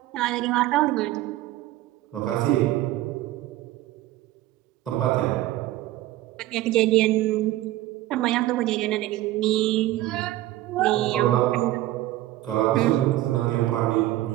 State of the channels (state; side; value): quieter; left; 15.6 dB